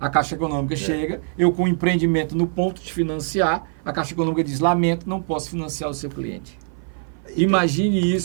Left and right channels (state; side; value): silent; left; 56 dB below the other